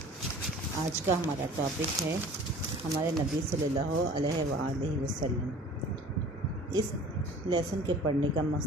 आज का हमारा टॉपिक है हमारे नबी सल्लल्लाहु अलैहि वसल्लम। इस लेसन के पढ़ने का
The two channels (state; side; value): normal; both; correlation 0.45